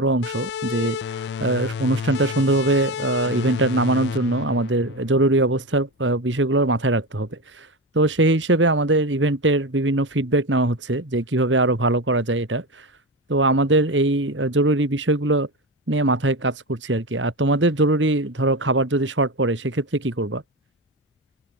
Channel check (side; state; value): both; normal; correlation 0.20